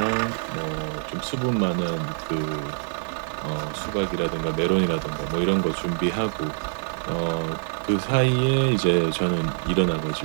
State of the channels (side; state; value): left; silent; 62 dB below the other